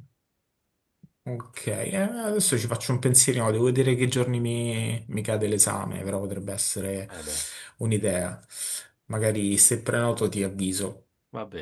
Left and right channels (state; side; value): identical; both; correlation 1.00